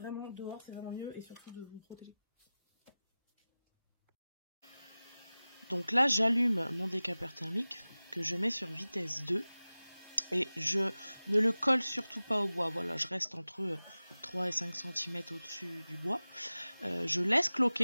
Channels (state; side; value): inverted; both; correlation -0.97